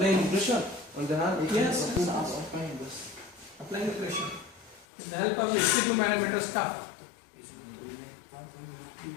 pressure on the hand? Yes. Applying the pressure. With the help of the 62 manometer cuff.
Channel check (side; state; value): right; drops out; at 4.9 s